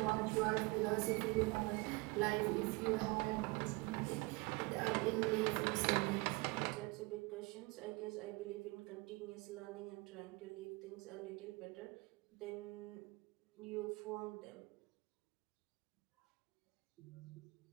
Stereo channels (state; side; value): quieter; left; 25.1 dB